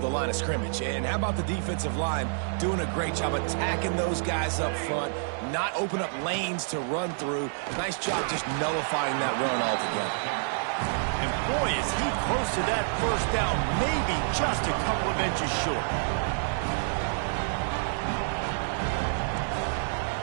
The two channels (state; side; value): silent; left; digital silence